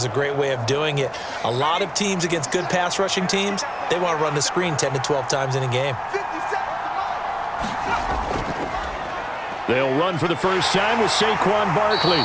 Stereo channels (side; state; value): both; identical; correlation 1.00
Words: a great way of doing it. A lot of teams against good pass rushing teams, they want to run the screen 10 to 12 times in a game. They'll run for the first time with Saquon Barkley.